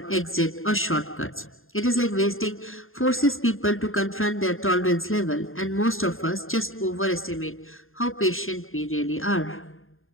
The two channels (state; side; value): late; right; 0.60 ms